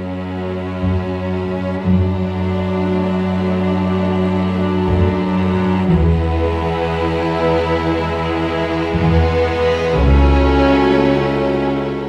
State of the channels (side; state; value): both; identical; correlation 1.00